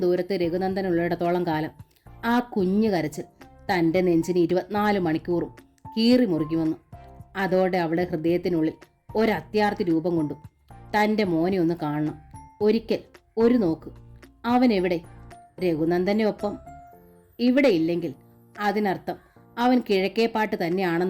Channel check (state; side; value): identical; both; correlation 1.00